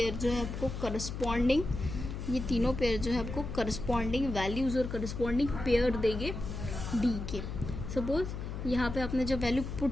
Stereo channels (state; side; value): noise; left; hum, 6 dB below the sound